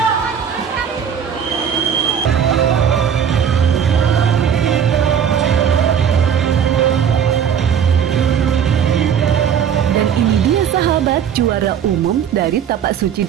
secara umum dari Tapak Suci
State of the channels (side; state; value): left; quieter; 8.0 dB